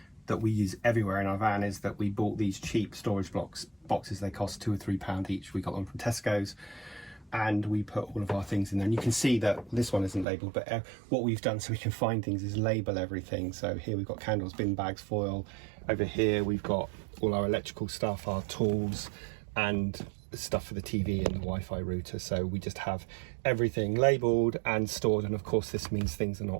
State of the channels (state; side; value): drops out; left; at 10.2 s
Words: that we use everywhere in our van is that we bought these cheap storage boxes. They cost £2 or £3 each. We got them from Tesco's, and we put all of our things in there. And you can see that this one isn't labelled, but what we've done so we can find things is label everything. So here we've got candles, bin bags, foil. Over here we've got all our electrical stuff, our tools, and stuff for the TV and the Wi-Fi router. So we just have everything labelled and stored, and of course this means things are